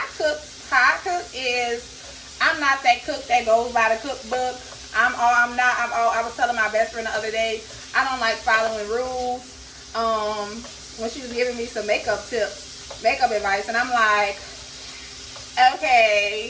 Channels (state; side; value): identical; both; correlation 1.00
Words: I cook is, I'm not that cook that goes by the cookbook. I was telling my best friend the other day, I don't like following rules. When she was giving me some makeup advice, and I'm like,